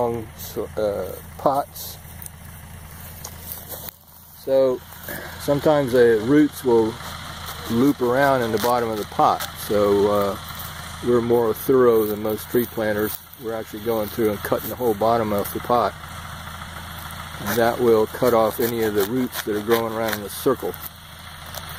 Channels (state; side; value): identical; both; correlation 1.00